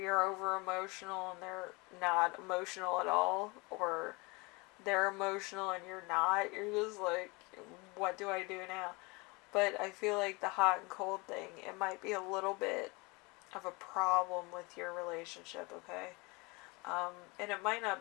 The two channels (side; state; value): right; quieter; 26.8 dB